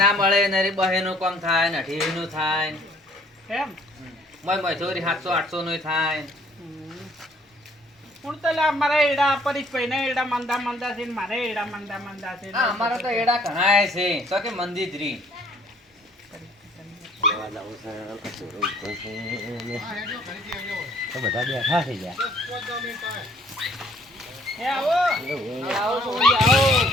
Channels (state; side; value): normal; both; correlation 0.60